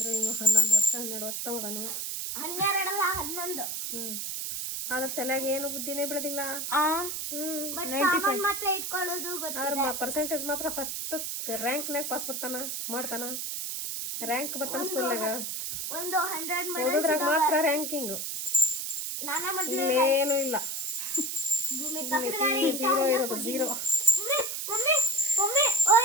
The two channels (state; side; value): noise; right; hiss, 4 dB below the sound